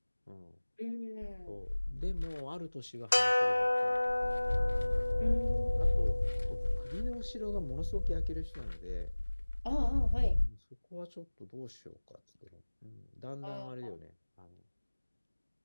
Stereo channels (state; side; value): inverted; both; correlation -1.00